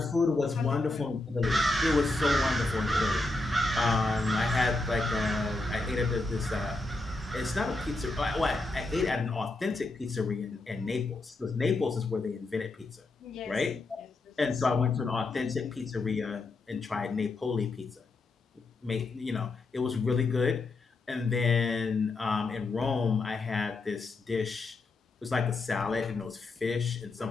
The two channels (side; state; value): right; quieter; 3.1 dB